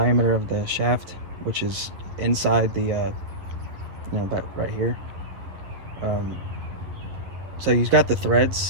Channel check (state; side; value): late; left; 10 ms